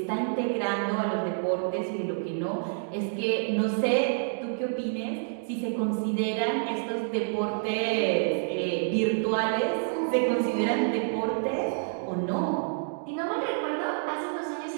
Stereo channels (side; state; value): left; silent; digital silence